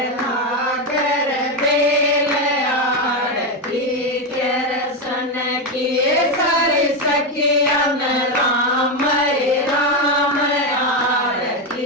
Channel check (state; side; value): normal; both; correlation 0.09